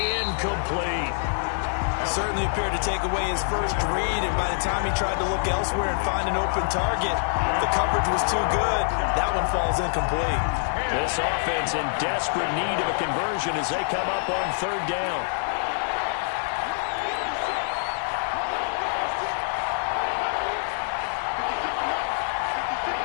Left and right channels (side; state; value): right; silent; digital silence